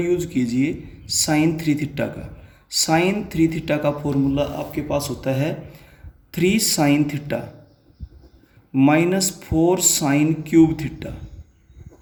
कीजिए साइन 3 थीटा का। साइन 3 थीटा का फॉर्मूला आपके पास होता है 3 sine theta minus 4 sine cube theta.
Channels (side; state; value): both; identical; correlation 1.00